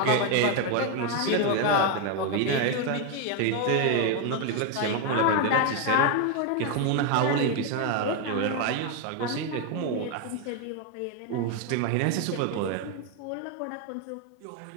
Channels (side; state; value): both; different; correlation 0.01